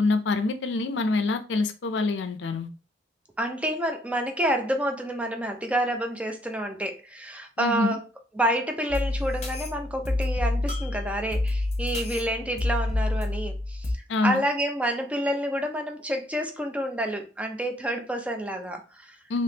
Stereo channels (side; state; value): both; normal; correlation 0.68